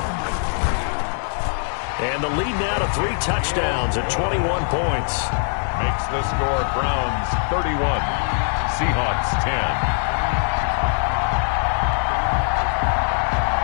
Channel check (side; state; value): right; silent; 55 dB below the other